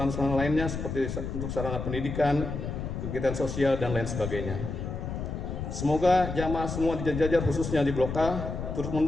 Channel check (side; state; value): left; noise; rumble, 5 dB below the sound